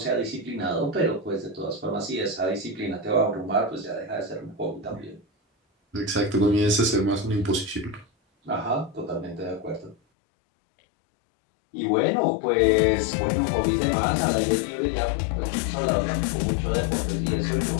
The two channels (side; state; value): right; drops out; at 10.0 s